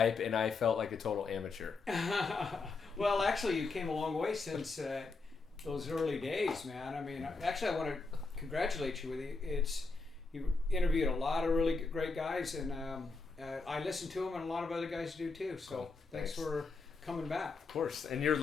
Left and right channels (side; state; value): right; quieter; 4.0 dB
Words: and I felt like a total amateur. Well, actually, you came a long way since those early days, man. I mean, actually, I want to congratulate you with it. You interviewed a lot of really great guys, and I listened to them, and a lot of other guys do too. So Cool. Thanks for coming back. Of course, and you're